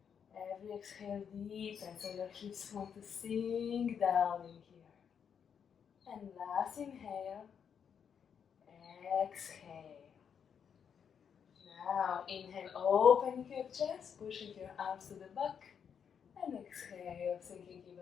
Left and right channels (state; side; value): quieter; right; 7.4 dB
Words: Every exhale, deepen, so your hips want to sink down in here. And last inhale, exhale. Now inhale, opening your chest, pushing your arms to the back. And exhale, sinking